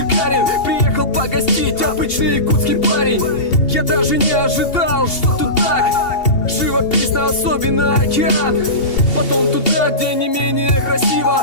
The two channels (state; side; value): late; right; 2.8 ms